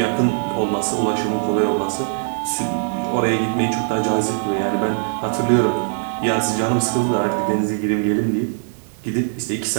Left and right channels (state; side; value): silent; left; digital silence